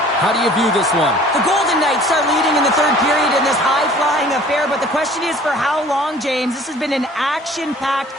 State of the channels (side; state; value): both; normal; correlation 0.50